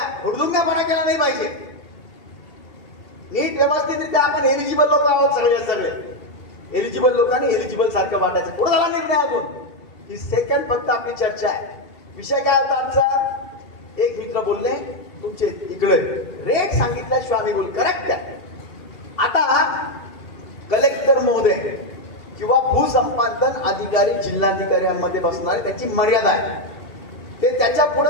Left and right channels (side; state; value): right; late; 2.7 ms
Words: हुडदुंगपणा केला नाही पाहिजे. नीट व्यवस्थितरित्या आपण एलिजिबल लोक आहोत सगळे एलिजिबल लोकांनी एलिजिबल सारखं वाटायचं. पुढे झाला निर्णय अजून. ही सेकंड फक्त आपली चर्चा आहे. विषय काय होता आमचा, एक मित्र बोलले तुमचे इकडे रेट सांगितल्याशिवाय आम्ही बोल करेक्ट आहे. आता कलेक्टर महोदय किंवा भूसंपादन अधिकारी जिल्हाधिकाऱ्यांमध्ये बसणारे त्यांची मर्यादा आहे. ते त्याच्या